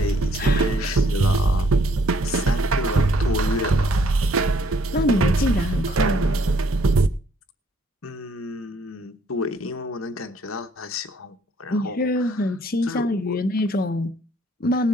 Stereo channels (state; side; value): normal; both; correlation 0.64